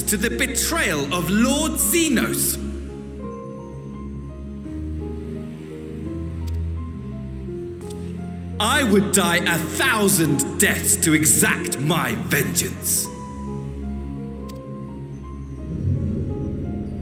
to the betrayal of Lord Xenos. I would die 1,000 deaths to exact my vengeance.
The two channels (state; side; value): identical; both; correlation 1.00